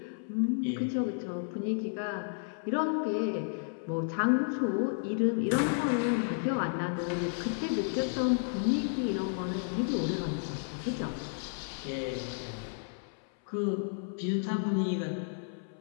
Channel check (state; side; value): silent; right; 56 dB below the other